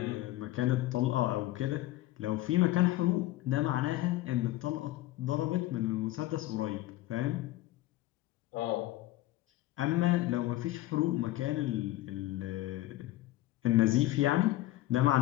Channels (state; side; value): quieter; right; 16.3 dB